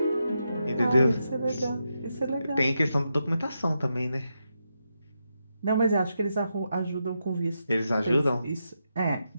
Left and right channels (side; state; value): both; inverted; correlation -0.85